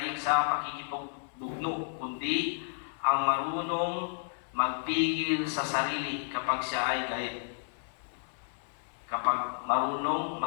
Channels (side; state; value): right; silent; 57 dB below the other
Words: sa pakikipagdugno, kundi ang marunong magpigil sa sarili kapag siya ay galit. Kapag marunong